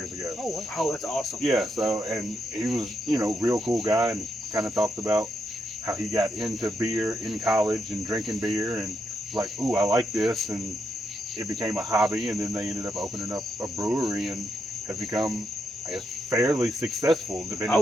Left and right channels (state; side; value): normal; both; correlation 0.81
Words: ago. Oh, wow. Oh, that's awesome. Yeah, and he was, real cool guy, and kind of talked about how he got into beer in college and drinking beer, and like, ooh, I like this, and it became a hobby, and then they ended up opening up a brewery and have become, I guess, fairly successful, depending